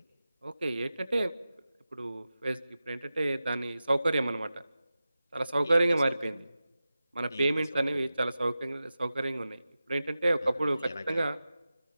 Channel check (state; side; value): inverted; both; correlation -0.94